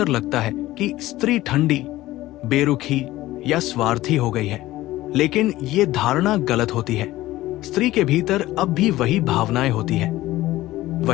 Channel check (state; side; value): quieter; right; 16.5 dB